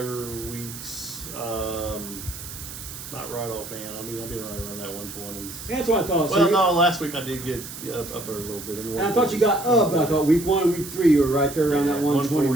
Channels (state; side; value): noise; right; hiss, 11 dB below the sound